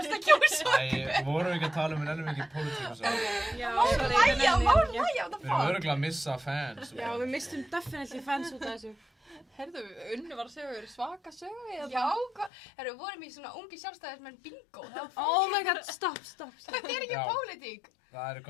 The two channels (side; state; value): right; drops out; at 12.5 s